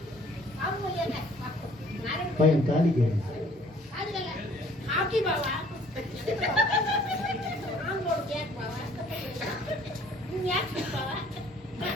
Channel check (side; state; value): both; normal; correlation 0.57